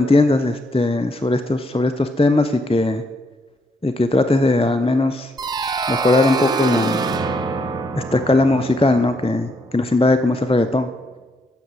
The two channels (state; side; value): normal; both; correlation 0.74